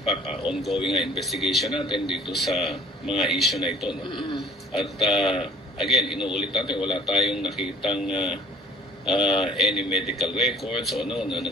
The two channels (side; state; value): both; normal; correlation 0.51